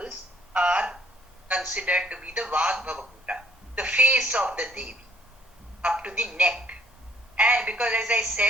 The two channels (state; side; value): normal; both; correlation 0.62